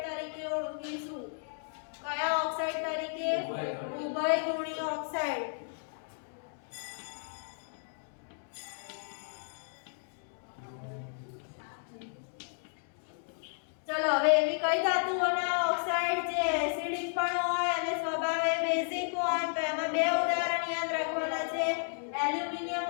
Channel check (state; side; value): silent; right; digital silence